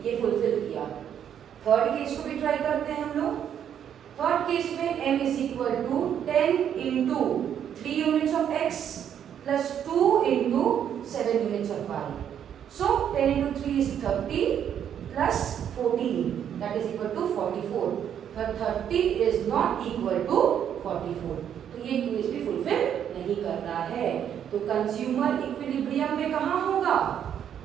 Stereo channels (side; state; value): left; quieter; 9.2 dB